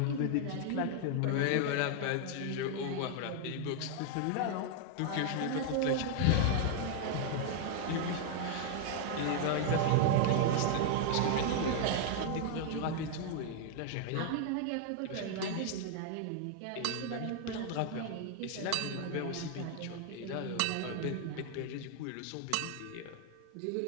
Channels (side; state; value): both; different; correlation 0.00